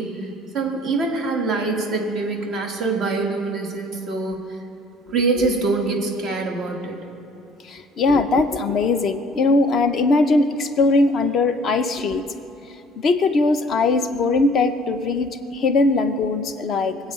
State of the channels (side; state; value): both; normal; correlation 0.53